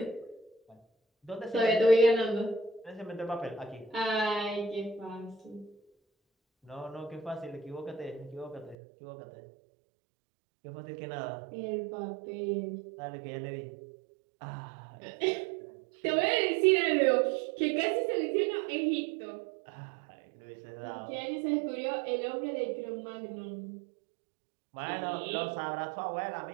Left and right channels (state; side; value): drops out; left; at 8.8 s